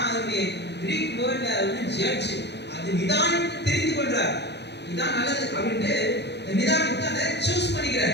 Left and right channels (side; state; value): right; late; 0.50 ms